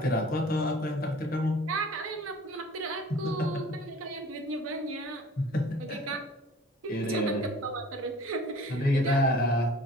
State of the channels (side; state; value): both; normal; correlation 0.47